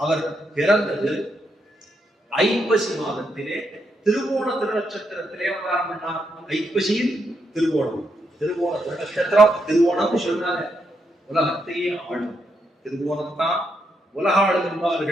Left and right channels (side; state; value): both; normal; correlation 0.80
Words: அவர் பிறந்தது ஐப்பசி மாதத்திலே திருவோண திருநட்சத்திரத்திலே அவதாரம் பண்ணார். ஐப்பசியில் திருவோணம். திருவோண திருநட்சத்திரம், திருவோணம் சொல்றாங்க உலகத்தையே ஆளும். திருவோணத்தான் உலக ஆளும்